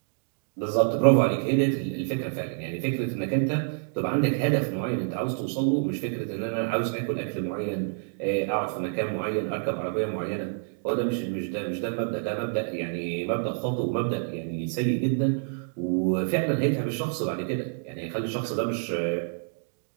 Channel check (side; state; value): left; silent; digital silence